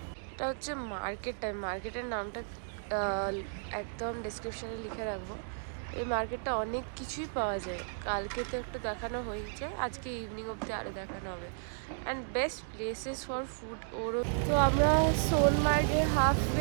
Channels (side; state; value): left; silent; digital silence